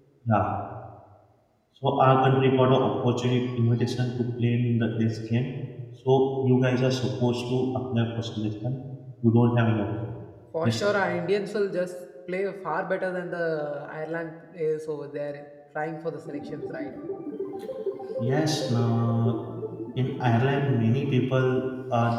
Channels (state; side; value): identical; both; correlation 1.00